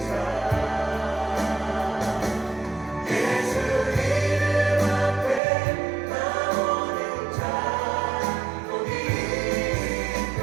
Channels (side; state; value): left; drops out; at 5.4 s